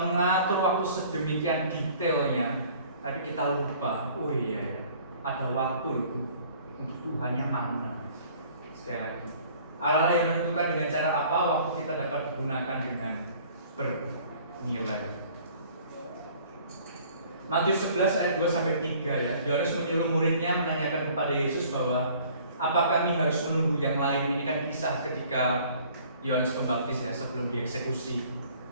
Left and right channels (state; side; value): inverted; both; correlation -0.53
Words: waktu sedemikian detailnya, tapi kita lupa, oh iya ada waktu itu untuk Tuhan yang mana. Sekali lagi, Allah yang menentukan dengan cara apa waktu kita dapat digunakan dengan bernilai. Matius 11 ayat 2-3 ya. Yohanes menyuruh muridnya menanyakan kepada Yesus bahwa apa kami harus menunggu yang lain. Ini kan kisah ketika Yohanes Pembaptis ya sebelum dieksekusi,